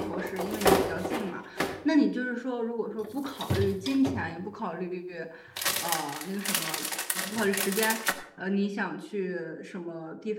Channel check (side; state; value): both; identical; correlation 1.00